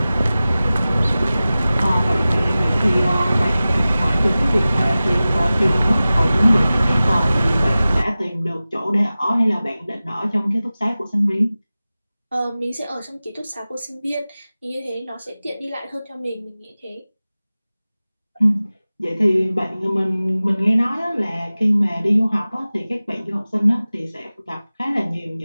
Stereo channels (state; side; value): inverted; both; correlation -0.97